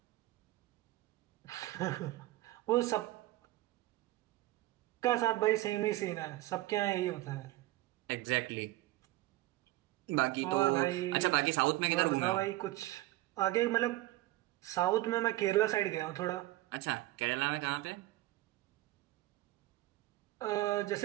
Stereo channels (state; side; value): quieter; left; 17.3 dB